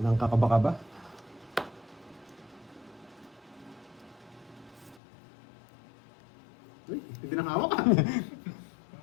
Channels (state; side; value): drops out; right; at 5.0 s